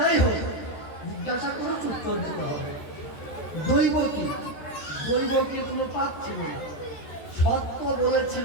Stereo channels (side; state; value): right; late; 13 ms